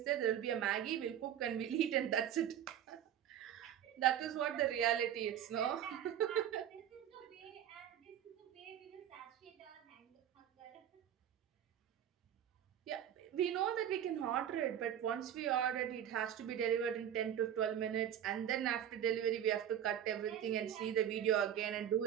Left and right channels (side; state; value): left; quieter; 10.1 dB